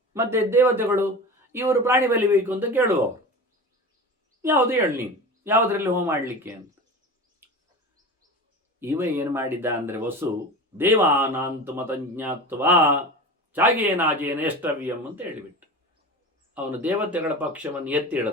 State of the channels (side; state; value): both; normal; correlation 0.30